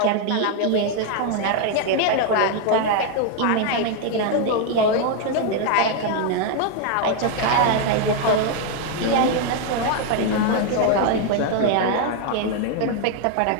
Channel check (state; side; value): different; both; correlation 0.00